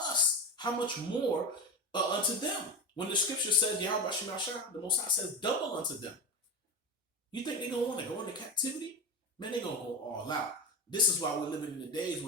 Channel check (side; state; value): both; normal; correlation 0.22